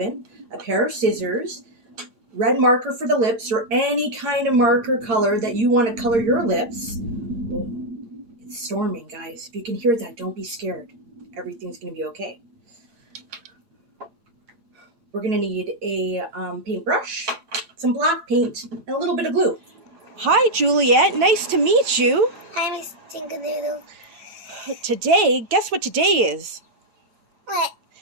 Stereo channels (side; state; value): left; late; 4.8 ms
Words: a pair of scissors, red marker for the lips, or any kind of marker color that you want to color your lips. Oh, it's storming, guys. If you can hear that, don't be scared. Everything's going to be okay. We're going to need a paintbrush, some black paint, and a little bit of glue. Hi, Juliet. Nice to meet you. Hi, mstinkerdoodle. Today, guess what today is? What?